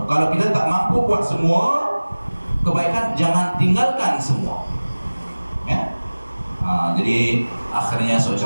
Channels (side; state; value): both; inverted; correlation -1.00